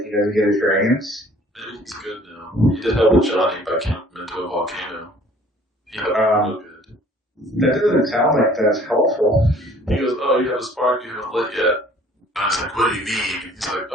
he doesn't get his dragons? Maybe he's good now. He did help with Johnny by counting him into a volcano. He helped him real good. That doesn't sound like that's helpful. He goes, oh, you have a spark you haven't lit yet. I was like, what do you mean? He's like,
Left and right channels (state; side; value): normal; both; correlation 0.54